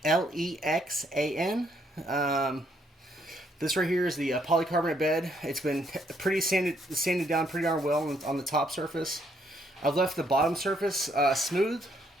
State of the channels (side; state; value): both; normal; correlation 0.71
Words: Lexan. This right here is the polycarbonate bed. It's been pretty sanded down pretty darn well on the top surface. I've left the bottom surface smooth